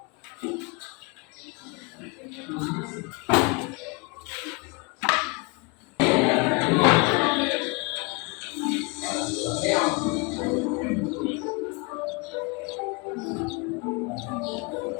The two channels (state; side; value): quieter; right; 29.2 dB